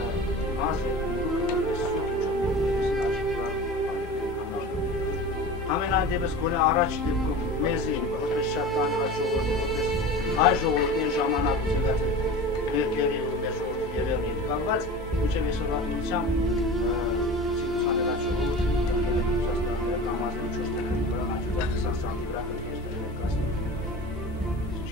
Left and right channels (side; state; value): both; normal; correlation 0.34